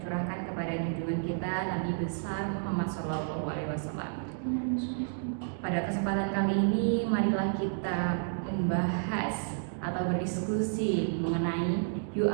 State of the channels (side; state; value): left; silent; digital silence